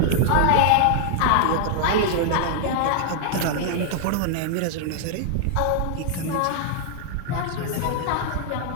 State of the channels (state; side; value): different; both; correlation -0.01